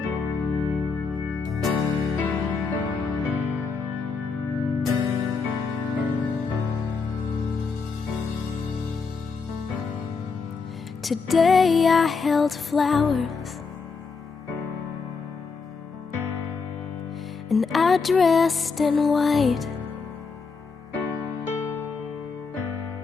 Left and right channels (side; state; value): right; quieter; 4.9 dB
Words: Today I held flowers and I dressed in white.